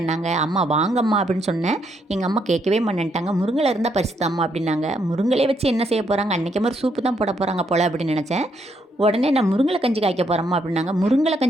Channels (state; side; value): normal; both; correlation 0.75